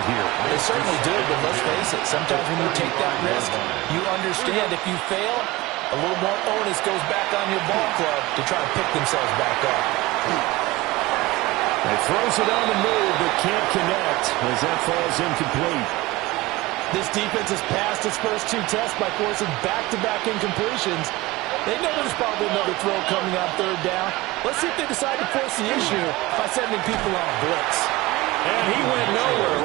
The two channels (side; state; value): left; quieter; 20.0 dB